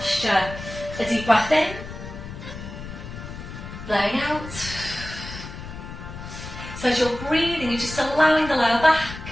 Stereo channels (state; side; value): noise; left; rumble, 11 dB below the sound